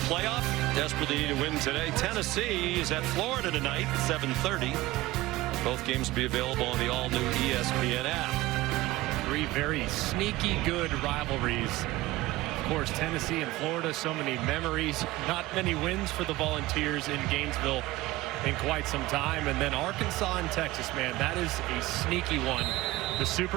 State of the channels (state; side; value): quieter; left; 18.4 dB